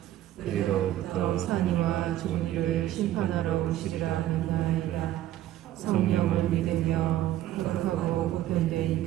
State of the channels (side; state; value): left; quieter; 13.3 dB